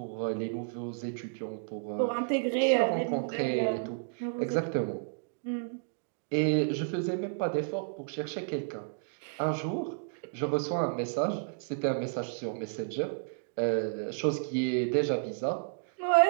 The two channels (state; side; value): silent; left; digital silence